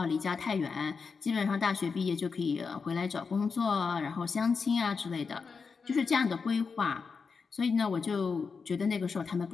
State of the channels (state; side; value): quieter; right; 5.2 dB